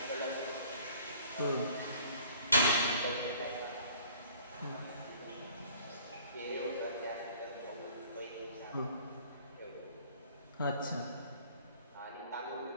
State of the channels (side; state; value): both; inverted; correlation -0.53